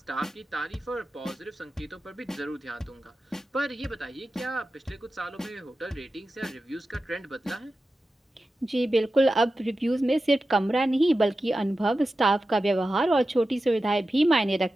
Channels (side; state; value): both; normal; correlation 0.93